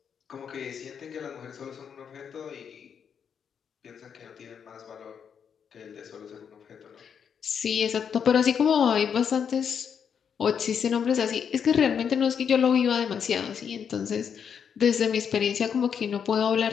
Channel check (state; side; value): quieter; right; 7.4 dB